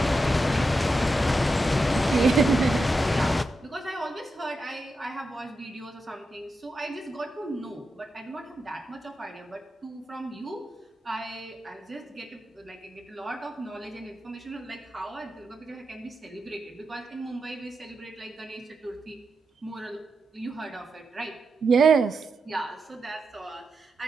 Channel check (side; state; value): both; normal; correlation 0.88